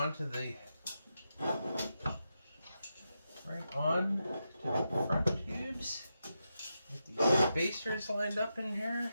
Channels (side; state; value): both; inverted; correlation -0.87